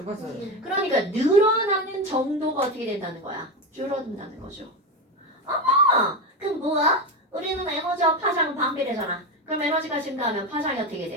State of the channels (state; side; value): normal; both; correlation 0.17